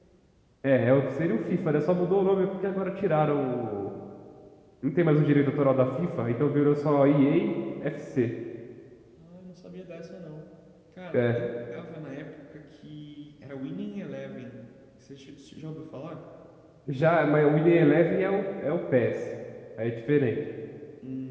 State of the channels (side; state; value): both; identical; correlation 1.00